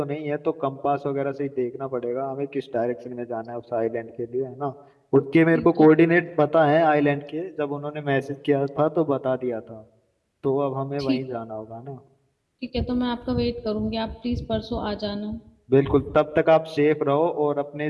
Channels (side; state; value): both; identical; correlation 1.00